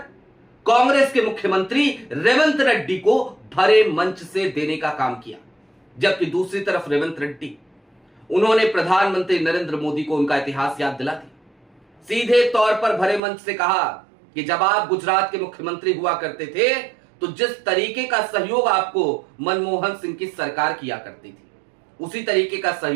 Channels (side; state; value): left; drops out; at 13.2 s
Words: कांग्रेस के मुख्यमंत्री रेवंत रेड्डी को भरे मंच से देने का काम किया। जबकि दूसरी तरफ रेवंत रेड्डी, उन्होंने प्रधानमंत्री नरेंद्र मोदी को उनका इतिहास याद दिला दिया। सीधे तौर पर भरे मंच से कहा कि जब आप गुजरात के मुख्यमंत्री हुआ करते थे तो जिस तरीके का सहयोग आपको मनमोहन सिंह की सरकार किया करती थी, उसी तरीके का